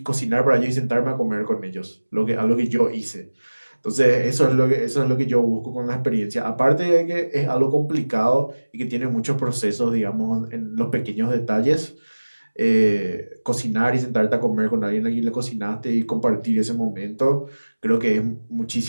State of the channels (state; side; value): inverted; both; correlation -1.00